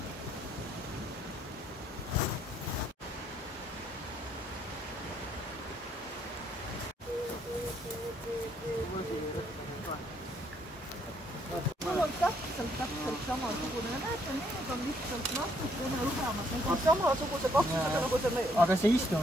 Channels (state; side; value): normal; both; correlation 0.69